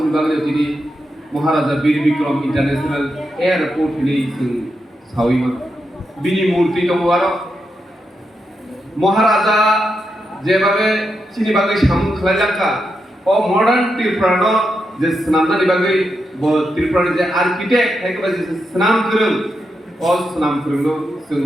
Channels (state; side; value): normal; both; correlation 0.85